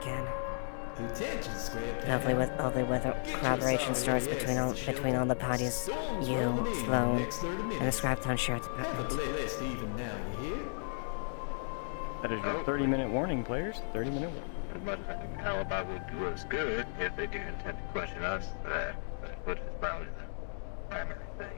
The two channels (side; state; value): right; silent; digital silence